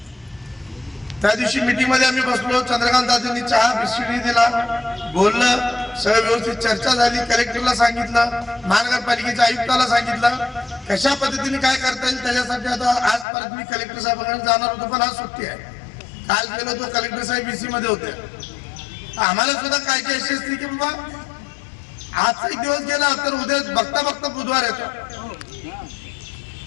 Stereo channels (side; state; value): right; drops out; at 13.2 s